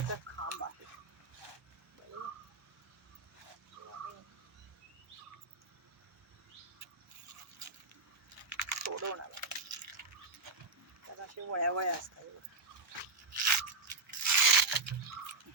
खांब आहे सोडवणार तर असे वळ्या असतात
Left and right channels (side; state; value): left; quieter; 3.7 dB